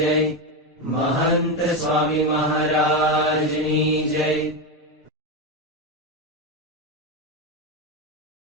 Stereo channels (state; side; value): normal; both; correlation 0.12